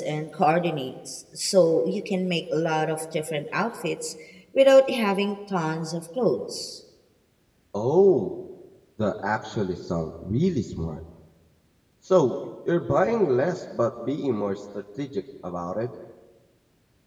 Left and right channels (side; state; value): both; identical; correlation 1.00